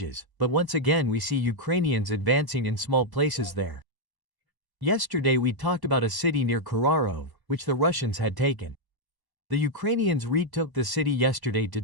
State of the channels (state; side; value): late; left; 1.1 ms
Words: but once again we see Ukrainians advancing in small places there. Yesterday we talked about a city near Kharkiv, which the Russians had taken. The Ukrainians retook the city yesterday to